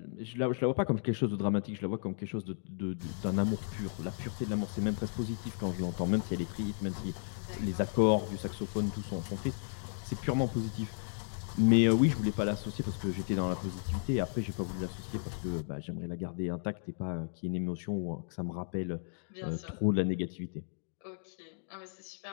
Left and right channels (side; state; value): right; silent; digital silence